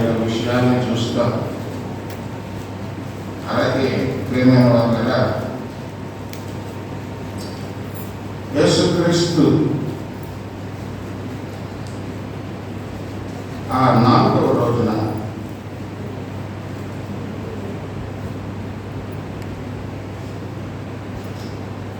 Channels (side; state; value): both; identical; correlation 1.00